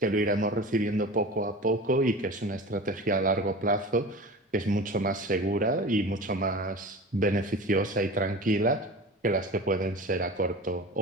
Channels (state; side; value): normal; both; correlation 0.34